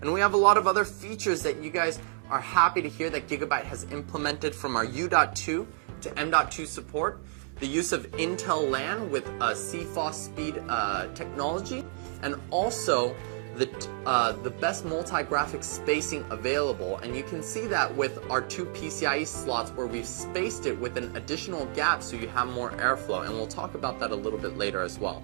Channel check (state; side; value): silent; left; digital silence